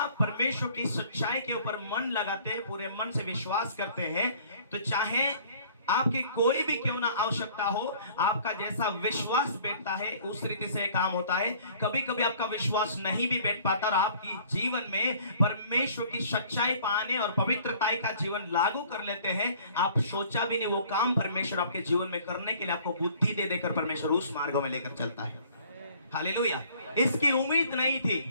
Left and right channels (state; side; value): inverted; both; correlation -0.54